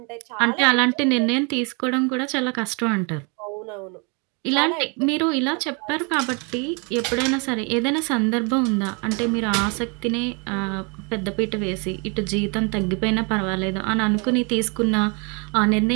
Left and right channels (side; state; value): left; quieter; 33.0 dB